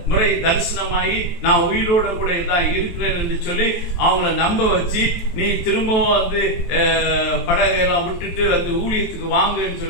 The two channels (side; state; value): right; late; 23 ms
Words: முறை தரிசனமாகி நான் உயிரோட கூட தான் இருக்கிறேன் என்று சொல்லி அவங்கள நம்ப வச்சு, நீ திரும்பவும் படகையெல்லாம் விட்டுட்டு ஊழியத்துக்கு வாங்கன்னு